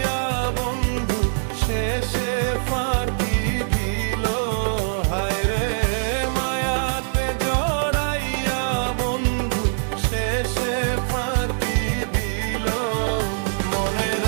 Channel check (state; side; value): silent; left; digital silence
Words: বন্ধু শেষে ফাঁকি দিল হায় রে, মায়াতে জড়াইয়া বন্ধু শেষে ফাঁকি দিল। মনে